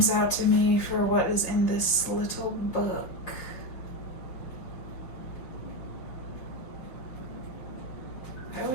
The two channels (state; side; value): late; right; 5.9 ms